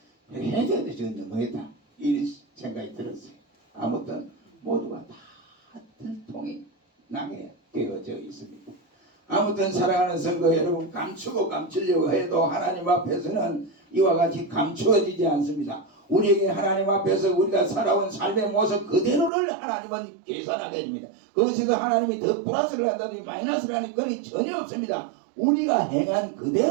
해줘야 돼 지금 너무했다 이런 생각이 들었어요. 아무튼 모두가 다 들통이 나게 되어져 있습니다. 아무튼 사랑하는 성도 여러분 감추고 감추려고 해도 하나님 앞에서는 이와 같이 감추어지지 않습니다. 우리에게 하나님 앞에서 우리가 살아온 삶의 모습 그대로를 하나님은 계산하게 됩니다. 그것에서 하나님이 더 플러스를 한다든지 마이너스를 하는 그런 전혀 없습니다. 우리가 행한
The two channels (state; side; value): drops out; left; at 19.3 s